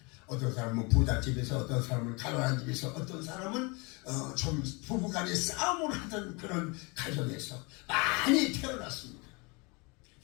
어떤 사람은 부잣집에서, 어떤 사람은 가난한 집에서, 어떤 사람은 좀 부부간에 싸움을 하던 그런 가정에서 많이 태어났습니다.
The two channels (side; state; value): right; quieter; 28.8 dB